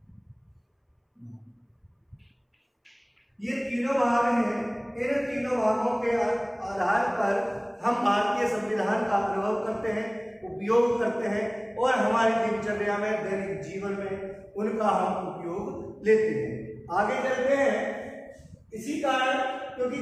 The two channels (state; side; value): identical; both; correlation 1.00